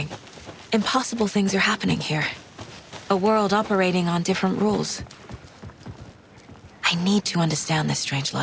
Impossible things are happening here. A world operating on different rules. I need to understand this strange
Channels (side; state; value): both; identical; correlation 1.00